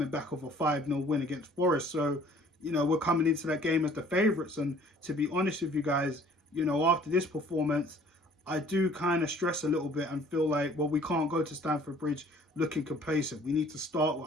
back off a 5-0 win against Forest. So, you know, we're coming into that game as the favourites. And to be honest with you guys, you know, after this performance, I do kind of stress a little bit and feel like, well, we can't go to Stamford Bridge looking complacent. We need to start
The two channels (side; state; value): both; normal; correlation 0.54